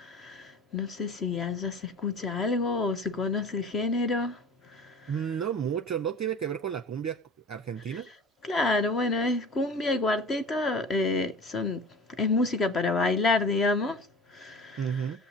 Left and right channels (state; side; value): normal; both; correlation 0.39